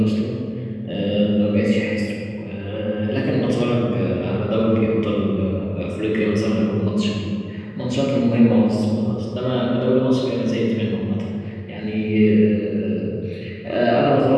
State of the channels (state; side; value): identical; both; correlation 1.00